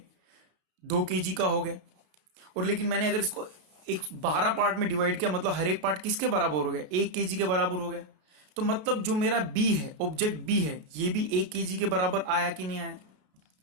2 kg का हो गया. और लेकिन मैंने अगर इसको 12 पार्ट में डिवाइड किया, मतलब हर एक पार्ट किसके बराबर हो गया, 1 kg के बराबर हो गया. तो मतलब जो मेरा बी है, ऑब्जेक्ट बी है, ये भी 1 kg के बराबर आया कि नहीं आया?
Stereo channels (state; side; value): late; left; 33 ms